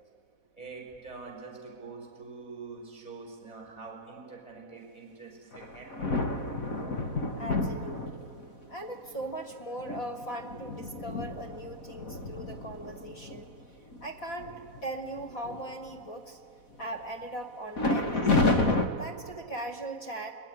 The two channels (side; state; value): right; late; 4.1 ms